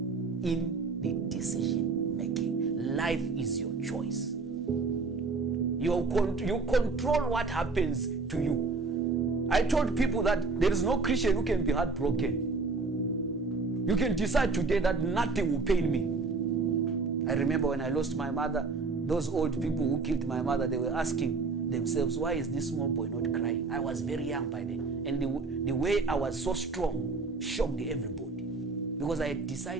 the decision making. Life is your choice. You control what happens to you. I told people that there is no Christian who can be heartbroken. You can decide today that nothing will pain me. I remember when I lost my mother, those old people who killed my mother, they were asking themselves, why is this small boy not crying? I was very young by then. And the way I was so strong shocked everybody. Because I had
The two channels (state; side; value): quieter; left; 4.1 dB